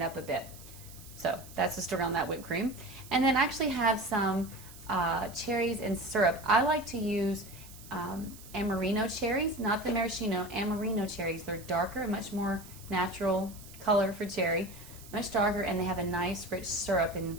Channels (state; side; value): noise; right; hiss, 18 dB below the sound